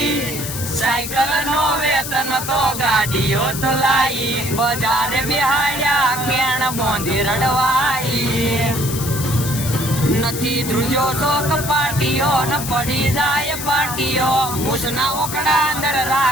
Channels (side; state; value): left; noise; hiss, 6 dB below the sound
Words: સાયકલ નો વેતન તો ગાડીઓ તો લાઈ બજારે બિહાડ્યા કેણ બોંધી રડવાઈ. નથી ધ્રુજો તો કપાટીઓ ન પડી જાય પાટીઓ મૂસના ઓકડા અંદર